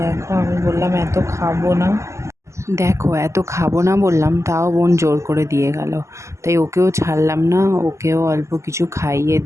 আমি বললাম এত খাবো না, দেখো এত খাবো না বললাম, তাও বোন জোর করে দিয়ে গেল। তাই ওকেও ছাড়লাম না, ওকেও অল্প কিছু খাইয়ে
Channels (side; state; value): left; late; 0.14 ms